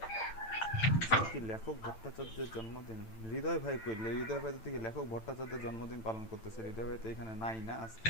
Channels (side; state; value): right; late; 9.0 ms